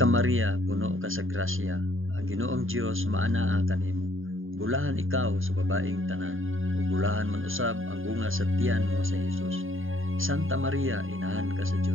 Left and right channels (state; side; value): late; left; 0.59 ms